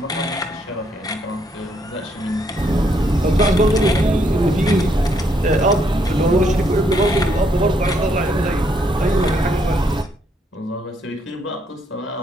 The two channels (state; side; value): normal; both; correlation 0.73